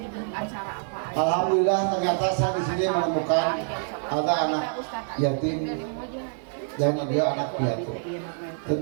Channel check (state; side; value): silent; left; 61 dB below the other